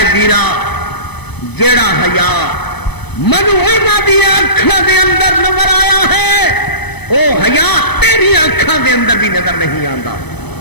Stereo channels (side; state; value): right; late; 0.99 ms